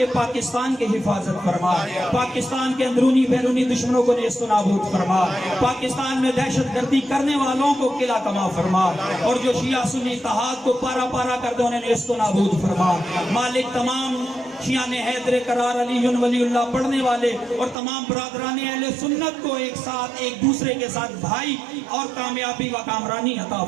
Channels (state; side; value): drops out; left; at 17.8 s